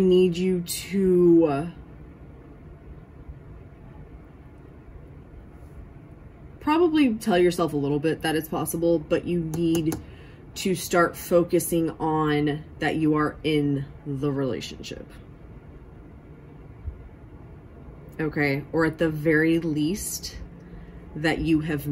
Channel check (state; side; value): identical; both; correlation 1.00